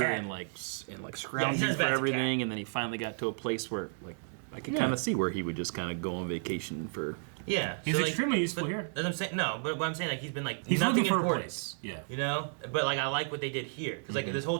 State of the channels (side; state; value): left; silent; 56 dB below the other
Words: and Yeah, scrounging he's not as for bad as a everything, and then he finally got to a place where I could kind of see where he would just kind of go on vacation for. yeah, he's extremely useful but, here. As I'm saying, no, but what I'm saying he's been He's nothing looking for a important, place. Yeah. you know. But I like what they did here because this whole